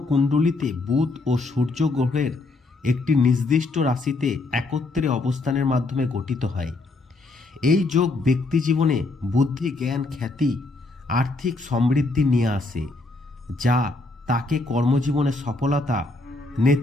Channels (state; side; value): quieter; right; 3.2 dB